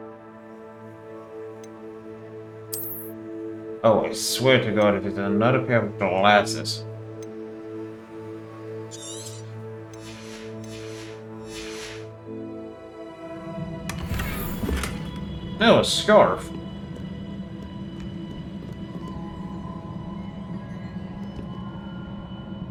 Oh, I swear to God, if it's another pair of glasses. No, a scarf.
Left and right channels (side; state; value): both; identical; correlation 1.00